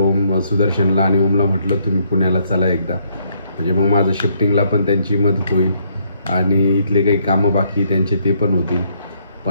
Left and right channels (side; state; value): both; inverted; correlation -0.69